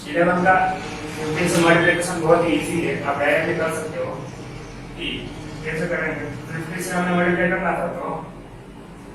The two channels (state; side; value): identical; both; correlation 1.00